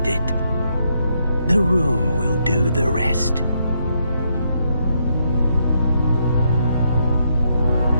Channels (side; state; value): both; inverted; correlation -0.77